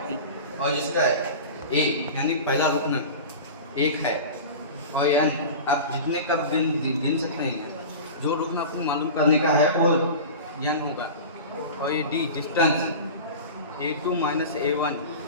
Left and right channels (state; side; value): inverted; both; correlation -0.32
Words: और इसका A यानी पहला रुकन 1 है, और N आप जितने कब गिन सकते हैं, जो रुकन आपको मालूम करने का है वो N होगा। और ये D डिस्टेंस A2 - A1